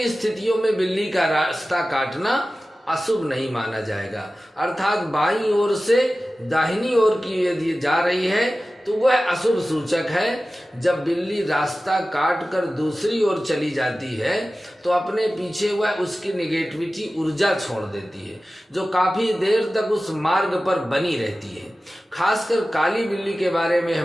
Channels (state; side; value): normal; both; correlation 0.95